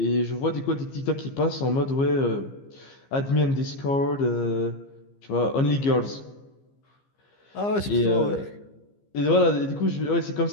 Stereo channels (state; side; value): late; right; 15 ms